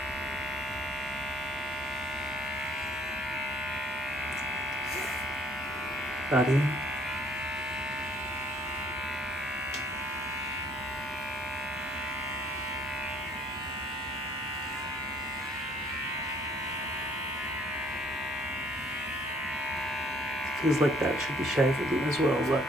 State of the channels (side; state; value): both; normal; correlation 0.62